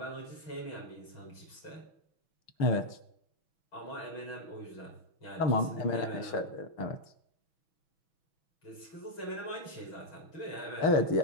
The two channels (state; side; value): late; right; 6.2 ms